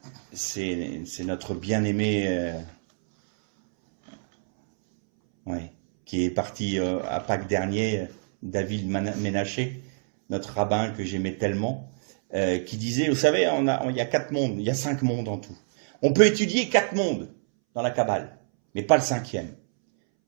C'est notre bien-aimé qui est parti à Pâques dernier, David Ménaché, notre rabbin que j'aimais tellement, qui disait, vous savez, il y a 4 mondes, il y a 5 mondes en tout. On peut étudier 4 mondes dans la Kabbale, mais pas le 5e.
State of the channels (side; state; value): left; silent; 61 dB below the other